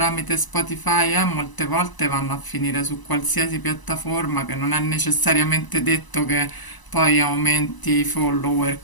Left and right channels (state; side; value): late; right; 1.0 ms